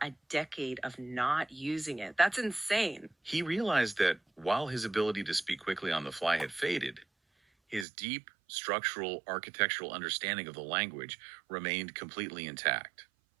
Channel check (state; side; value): drops out; left; at 7.9 s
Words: a decade of not using it. That's insane. He realized that while his ability to speak quickly on the fly had faded, his deep, structural, architectural understanding of the language remained completely intact.